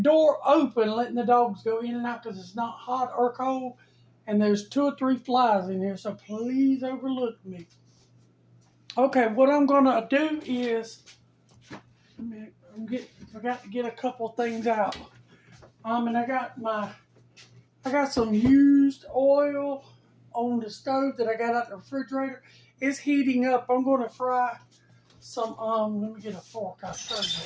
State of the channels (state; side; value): identical; both; correlation 1.00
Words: door open, letting the dogs go in and out because it's not hot or cold, and there's 2 or 3 flies in here, so please overlook me. Okay, what I'm gonna do is, forgot to get a couple things out. And I got some used oil on the stove that I got out the refrigerator. It's heating up. I'm gonna fry some, let me get a fork, I'll show